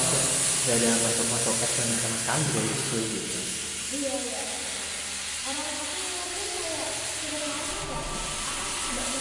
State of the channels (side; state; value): both; identical; correlation 1.00